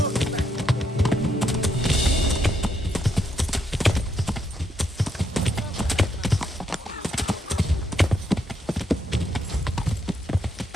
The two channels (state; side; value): normal; both; correlation 0.77